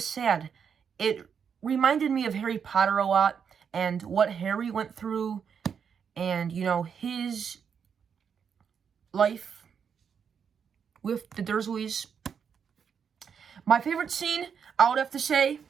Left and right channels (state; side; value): quieter; left; 7.0 dB